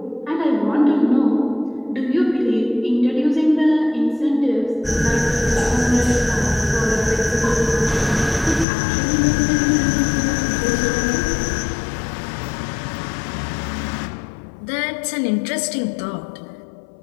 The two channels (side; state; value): right; drops out; at 8.7 s